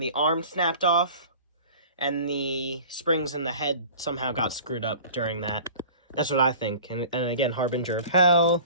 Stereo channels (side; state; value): both; inverted; correlation -0.43